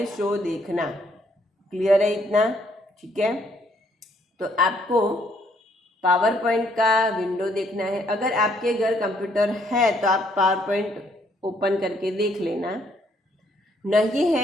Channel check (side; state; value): both; normal; correlation 0.68